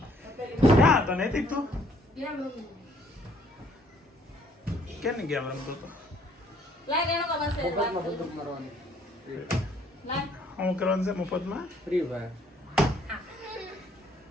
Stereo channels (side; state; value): both; normal; correlation 0.62